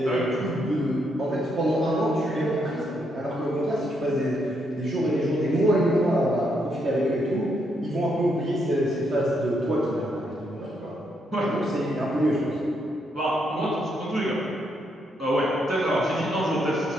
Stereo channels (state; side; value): normal; both; correlation 0.77